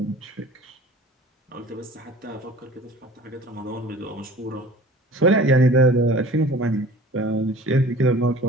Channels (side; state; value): both; normal; correlation 0.45